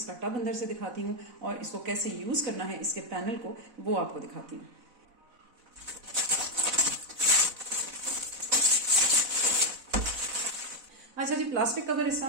टब अंदर से दिखाती हूँ और इसको कैसे यूज करना है इसके पैनल को वो आपको दिखाती हूँ। अच्छा जी, प्लास्टिक कवर इसका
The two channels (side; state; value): left; late; 4.0 ms